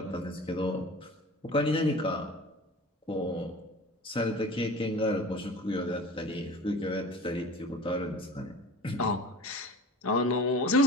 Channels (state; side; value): normal; both; correlation 0.38